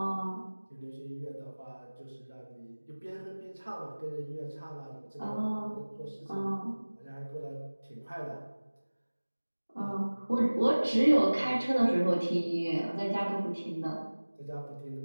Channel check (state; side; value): inverted; both; correlation -1.00